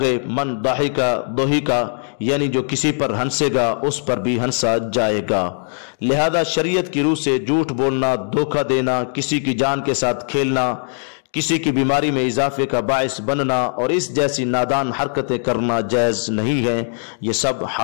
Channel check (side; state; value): right; silent; 66 dB below the other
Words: ہے من ضحک ضحک، یعنی جو کسی پر ہنسے گا اس پر بھی ہنسا جائے گا۔ لہذا شریعت کی روح سے جھوٹ بولنا، دھوکہ دینا، کسی کی جان کے ساتھ کھیلنا، کسی کی بیماری میں اضافے کا باعث بننا اور اس جیسی نادان حرکتیں کرنا جائز نہیں ہیں، یہ سب